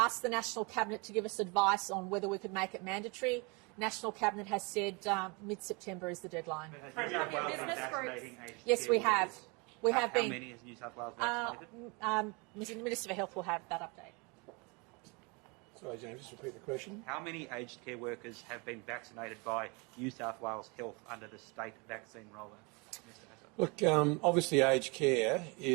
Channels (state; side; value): quieter; left; 30.0 dB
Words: the National Cabinet to give us advice on whether we could make it mandatory. National Cabinet has said mid-September is the deadline. But has New South Wales been vaccinating aged Yes, care we have. workers? We have How been. many has New South Wales vaccinated? The Minister for Health will have that update. Sorry, James, just repeat the question. How many aged care workers have been vaccinated by New South Wales Health under the state vaccine rollout? Mr. Hassel. Look, obviously aged care